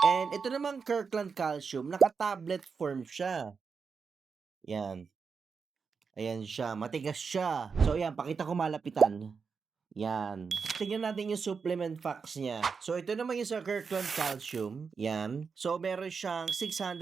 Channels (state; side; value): quieter; left; 5.5 dB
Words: And ito namang Kirkland calcium, naka-tablet form siya. Yan. Ayan siya. Matigas siya. So, yan. Pakita ko malapitan. Yan. Tingnan natin yung supplement facts niya. So, ito naman yung sa Kirkland Calcium. Yan. So, meron siyang